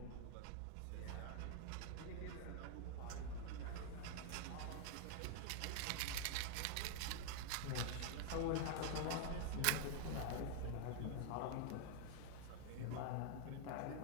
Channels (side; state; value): both; different; correlation 0.00